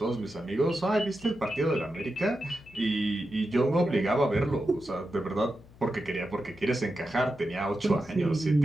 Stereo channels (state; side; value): noise; left; hum, 23 dB below the sound